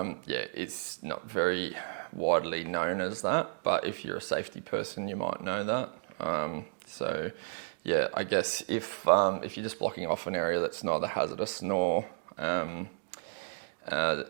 it's not very widely known as that, but if you're a safety person, you might know that. I guess if you're just blocking off an area that's neither hazardous nor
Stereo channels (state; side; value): silent; left; digital silence